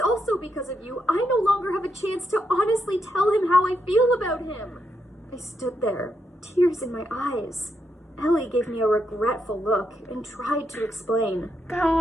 also because of you I no longer have a chance to honestly tell him how I feel about him. I stood there, tears in my eyes. Ellie gave me a regretful look and tried to explain.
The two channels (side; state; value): both; normal; correlation 0.81